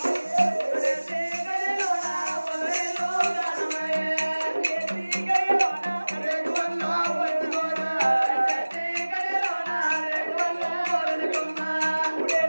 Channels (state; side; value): inverted; both; correlation -1.00